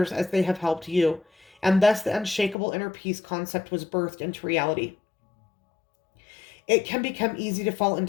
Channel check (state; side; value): drops out; right; at 2.6 s